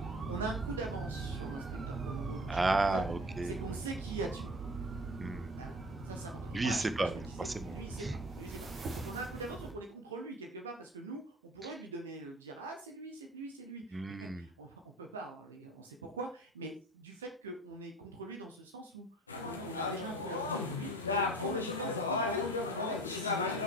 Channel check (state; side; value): normal; both; correlation 0.42